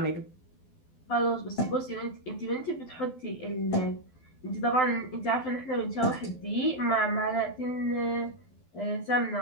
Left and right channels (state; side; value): late; right; 12 ms